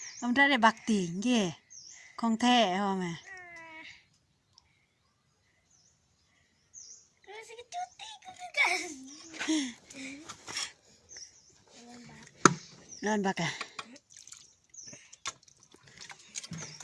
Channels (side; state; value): both; identical; correlation 1.00